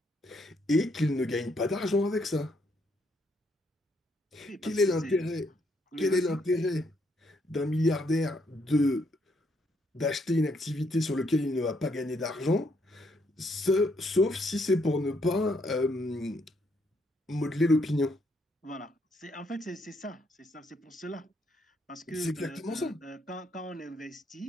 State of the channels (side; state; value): both; normal; correlation 0.73